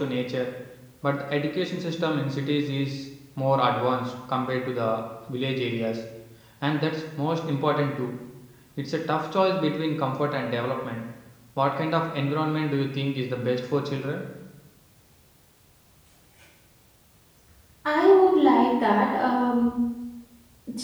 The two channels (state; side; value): identical; both; correlation 1.00